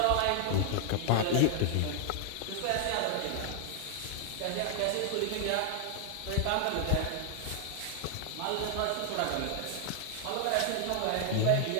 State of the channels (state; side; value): different; both; correlation 0.00